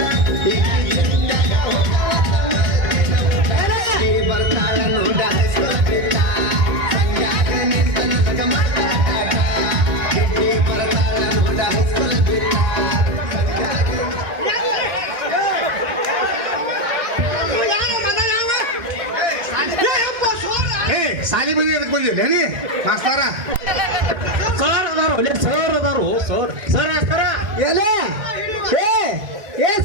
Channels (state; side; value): late; left; 2.2 ms